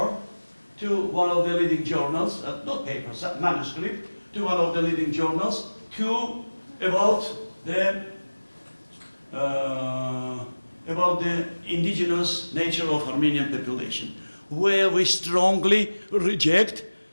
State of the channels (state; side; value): inverted; both; correlation -1.00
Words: to one of the leading journals, not paper, manuscript, to one of the leading journals about the indigenous nature of Armenian population, where we strongly reject